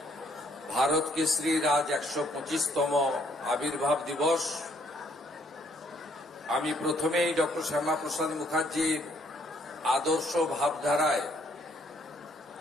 ভারত কেশরীর আজ ১২৫তম আবির্ভাব দিবস। আমি প্রথমেই ডক্টর শ্যামাপ্রসাদ মুখার্জির আদর্শ ভাবধারায়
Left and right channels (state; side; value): normal; both; correlation 0.66